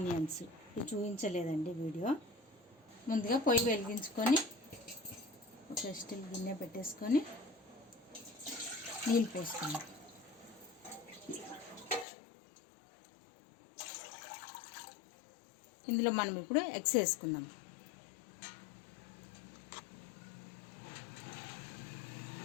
ఇవి చూపించలేదండి వీడియో. ముందుగా పొయ్యి వెలిగించుకొని ఒక స్టీల్ గిన్నె పెట్టేసుకొని నీళ్ళు పోసుకున్నాం. ఇందులో మనం ఇప్పుడు ఎగ్స్ వేసుకుందాం.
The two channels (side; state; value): right; drops out; at 12.1 s